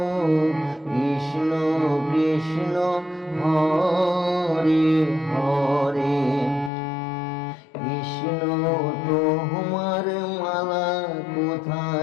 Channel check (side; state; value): right; drops out; at 6.7 s